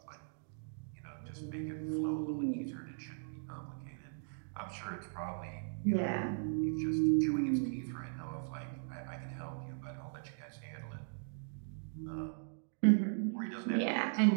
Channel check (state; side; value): silent; left; digital silence